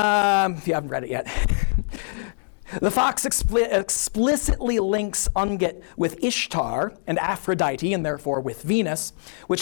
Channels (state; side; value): silent; right; digital silence